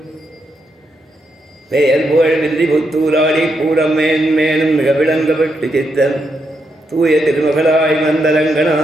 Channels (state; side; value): normal; both; correlation 0.81